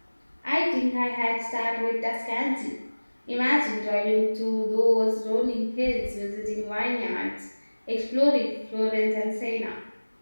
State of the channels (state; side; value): inverted; both; correlation -1.00